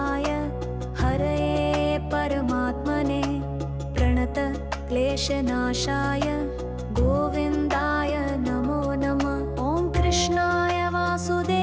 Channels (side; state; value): both; identical; correlation 1.00